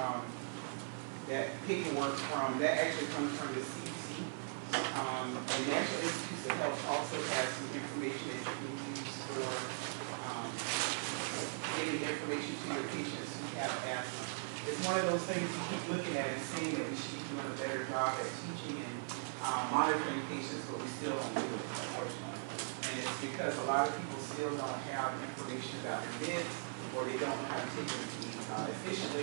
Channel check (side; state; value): left; silent; 51 dB below the other